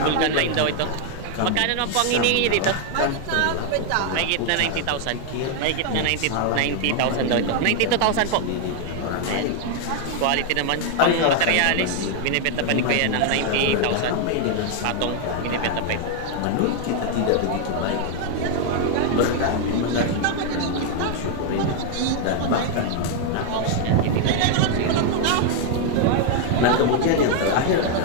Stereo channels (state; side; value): different; both; correlation 0.00